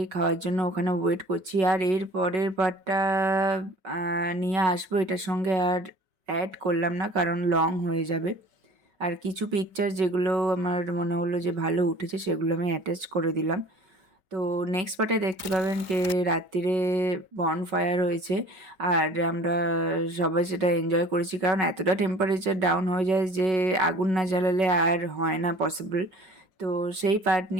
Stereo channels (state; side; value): late; left; 5.4 ms